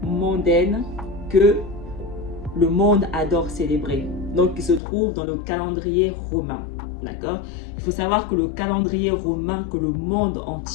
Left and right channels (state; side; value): drops out; right; at 4.8 s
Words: mondaines que le monde adore célébrer, donc qui se trouve dans le calendrier romain. D'accord? Il faut savoir que le calendrier romain que le monde